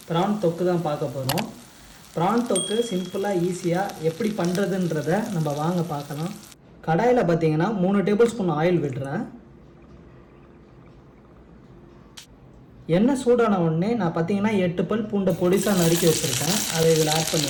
ப்ரான் தொக்கு தான் பார்க்க போகிறோம். ப்ரான் தொக்கு சிம்பிளாக ஈஸியாக எப்படி பண்ணுறதுன்றதை நம்ம வாங்க பார்க்கலாம். கடாயில் பார்த்தீங்கன்னா 3 டேபிள் ஸ்பூன் ஆயில் விடுறேன். எண்ணெய் சூடான உடனே நான் பார்த்தீங்கன்னா 8 பல் பூண்டை பொடிசாக நறுக்கி வச்சுருக்கேன். அதை இதில் ஆட்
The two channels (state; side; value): identical; both; correlation 1.00